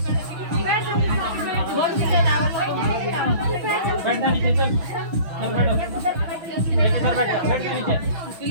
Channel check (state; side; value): late; left; 6.3 ms